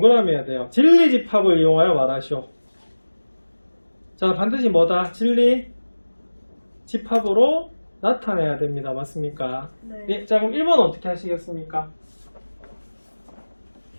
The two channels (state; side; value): inverted; both; correlation -1.00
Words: 해야 돼요. 진리 집합을 이용하여 말하시오. 자, 반드시 뭐다? 진리 집합으로 나타내야 됩니다. 맞습니까? 네. 네, 자, 그럼 1번 어떻게 하시겠습니까?